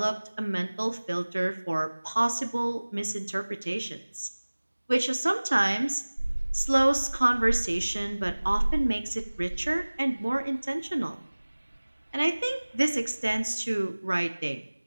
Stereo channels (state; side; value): inverted; both; correlation -1.00